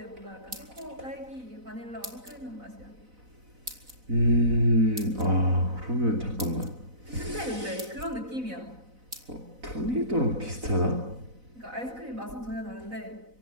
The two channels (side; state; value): left; late; 4.0 ms